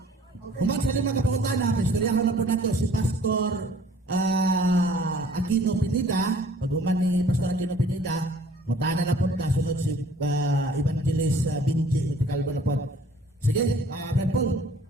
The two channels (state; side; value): normal; both; correlation 0.54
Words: human sa lima ka pangutana, istoryahan na po nato si Pastor Aquino Pineda. Pag human ni Pastor Aquino Pineda, mutana na po ka, sunod si Evangelist Binji, itikalbo na po. Sige, Brad Paul,